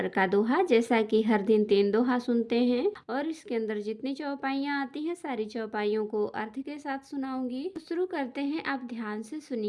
का दोहा। जैसा कि हर दिन 3 दोहा सुनते हैं और इसके अंदर जितनी चौपाइयाँ आती हैं सारी चौपाइयों को अर्थ के साथ सुनाऊंगी। तो शुरू करते हैं, आप ध्यान से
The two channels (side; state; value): both; identical; correlation 1.00